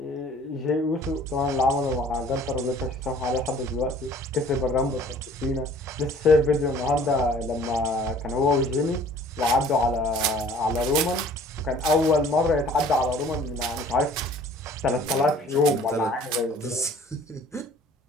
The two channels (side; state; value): both; normal; correlation 0.52